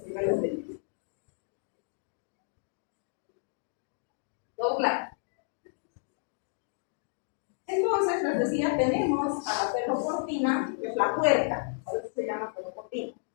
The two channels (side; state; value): right; silent; digital silence